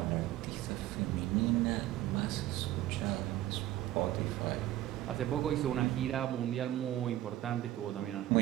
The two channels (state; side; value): quieter; left; 14.3 dB